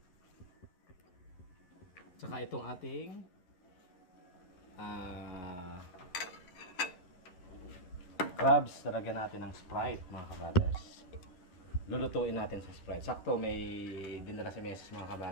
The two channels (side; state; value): right; late; 11 ms